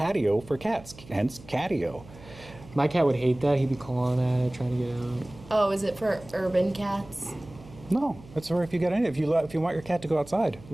for cats. Hence, catio. My cat would hate that. He'd be clawing at it, trying to get out. Oh, is it for urban cats? No, that's where if you get in. If you want your cat to go outside.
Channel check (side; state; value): right; noise; hum, 20 dB below the sound